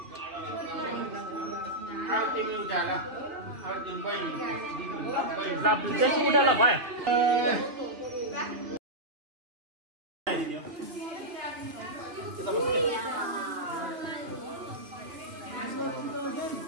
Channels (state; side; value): late; left; 3.2 ms